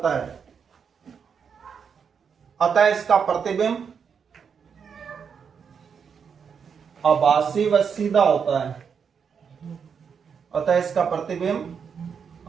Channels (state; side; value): quieter; left; 6.6 dB